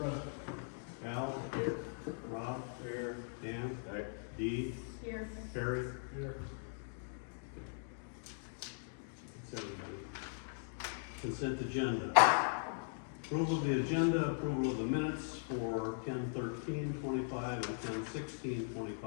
Al. Rob. Here. Dan. Dee. Here. Perry. Here. That's everybody. Consent agenda. Approval of the agenda, approval of the minutes for 10/13/25 and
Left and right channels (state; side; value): silent; right; digital silence